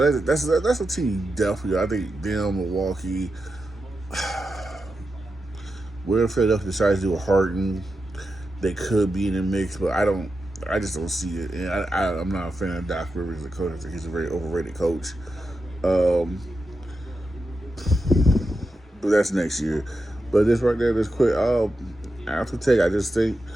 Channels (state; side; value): normal; both; correlation 0.89